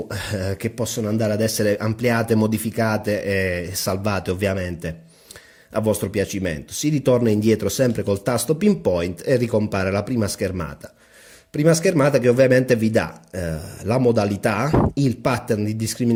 che possono andare ad essere ampliate, modificate e salvate ovviamente a vostro piacimento. Si ritorna indietro sempre col tasto pinpoint e ricompare la prima schermata. Prima schermata che ovviamente vi dà la modalità, il pattern di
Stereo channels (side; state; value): both; identical; correlation 1.00